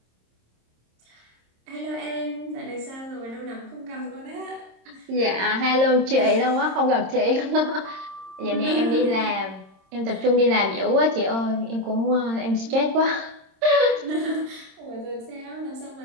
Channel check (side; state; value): left; late; 26 ms